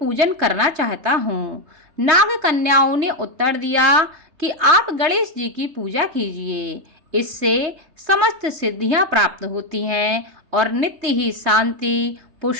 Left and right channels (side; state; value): left; late; 3.3 ms